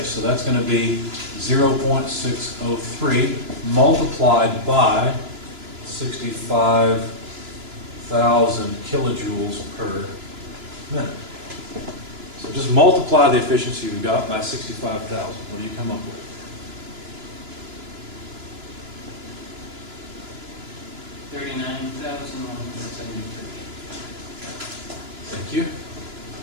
So that's going to be 0.603 multiplied by 65,000 kilojoules per minute. So just multiply the efficiency you got by 65,000. What do you come up with? $39,173. Thank you.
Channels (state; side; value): late; left; 2.9 ms